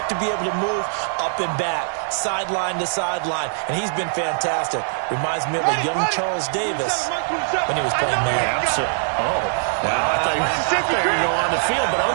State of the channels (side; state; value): left; silent; 62 dB below the other